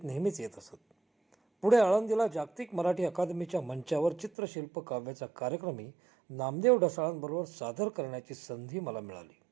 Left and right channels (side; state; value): left; drops out; at 4.3 s